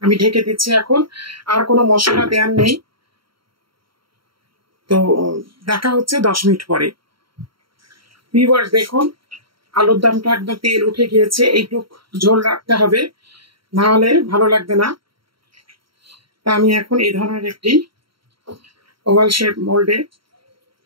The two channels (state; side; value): late; left; 0.74 ms